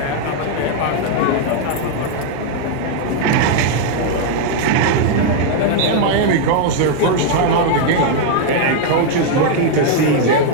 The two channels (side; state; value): both; different; correlation 0.00